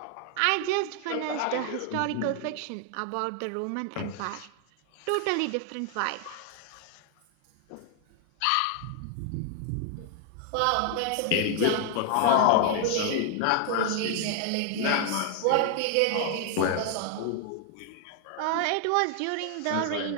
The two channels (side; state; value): both; different; correlation 0.00